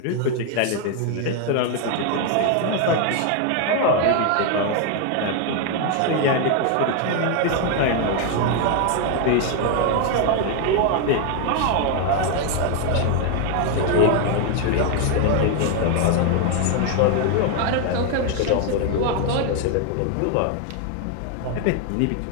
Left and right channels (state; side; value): different; both; correlation 0.01